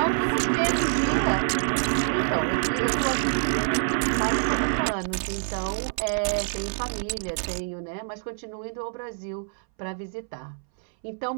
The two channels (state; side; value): silent; left; 61 dB below the other